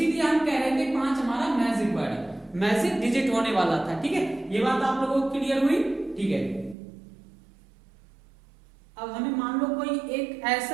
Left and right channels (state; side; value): drops out; left; at 6.8 s